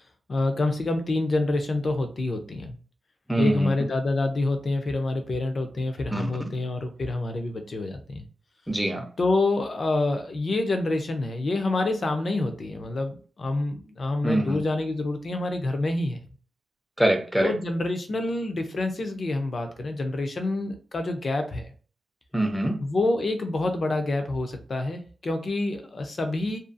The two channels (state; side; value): normal; both; correlation 0.92